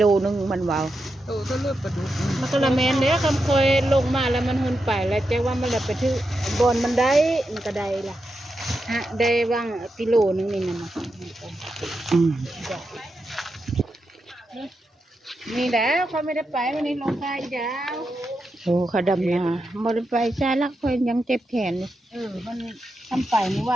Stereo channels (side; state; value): both; normal; correlation 0.87